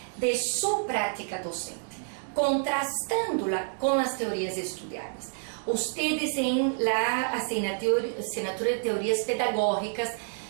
de sua prática docente, contrastando-la com as teorias estudadas. Vocês em la assinatura de teorias pedagógicas,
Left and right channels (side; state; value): left; silent; digital silence